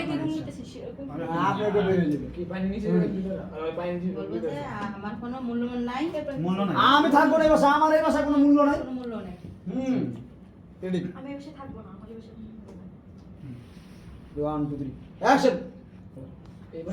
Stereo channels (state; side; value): identical; both; correlation 1.00